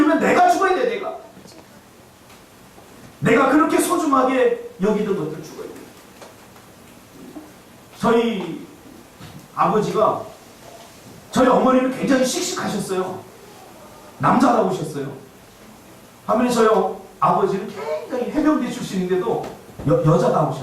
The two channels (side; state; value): both; identical; correlation 1.00